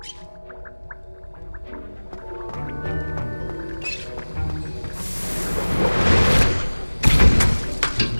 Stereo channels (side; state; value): both; inverted; correlation -1.00